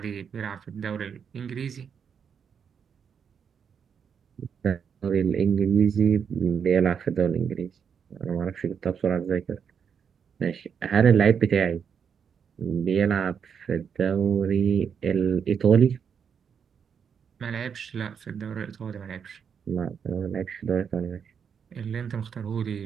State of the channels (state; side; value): quieter; left; 7.1 dB